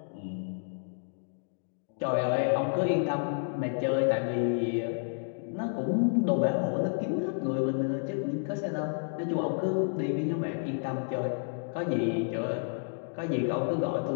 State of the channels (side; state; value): right; silent; digital silence